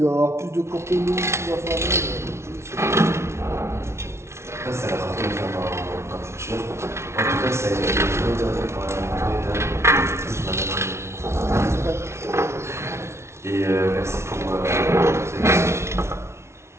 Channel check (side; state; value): left; late; 0.13 ms